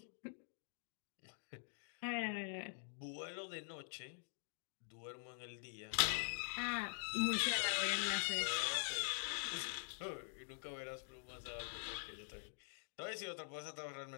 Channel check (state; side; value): silent; right; digital silence